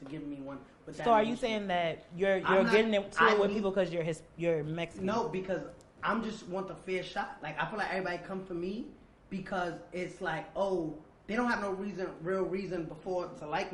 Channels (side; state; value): both; identical; correlation 1.00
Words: give me one. So are you saying that you're getting to it with people because you're Mexican? No, because I'm just want the fair shot. Like, I feel like everybody come for me because it's like, oh, they don't have no real reason before to like